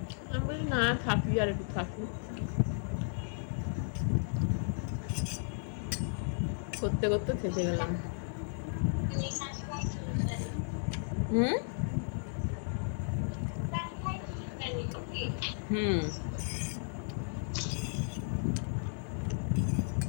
আমি বলি না, থাকি আর একটু থাকি। করতে করতে থেকে গেলাম। হুম হুম।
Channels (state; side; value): silent; right; 55 dB below the other